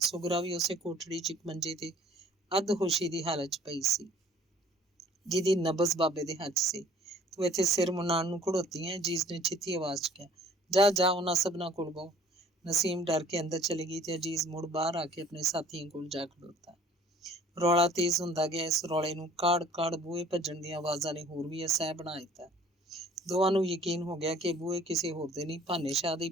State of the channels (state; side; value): normal; both; correlation 0.53